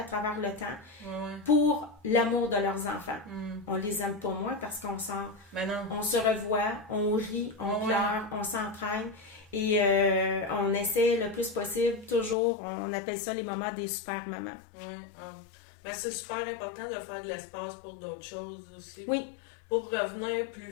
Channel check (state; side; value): drops out; right; at 12.4 s